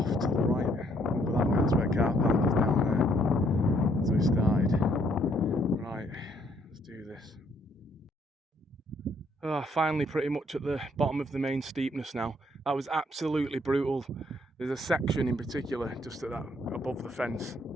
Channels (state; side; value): normal; both; correlation 0.68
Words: to the right over that way. That's where car park is, down there. So we started. Right, let's do this. Finally pretty much at the bottom of the main steepness now. That was absolutely brutal. There's a section in particular just at that, above the fence,